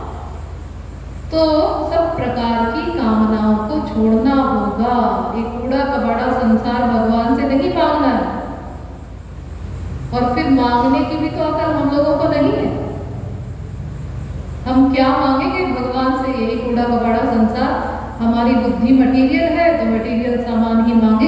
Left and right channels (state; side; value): identical; both; correlation 1.00